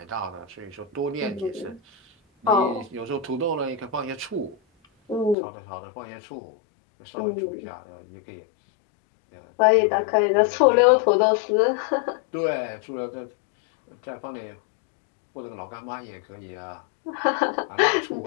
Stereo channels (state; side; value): drops out; right; at 5.4 s